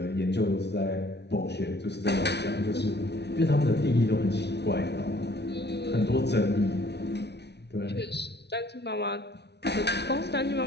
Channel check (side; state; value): right; late; 0.49 ms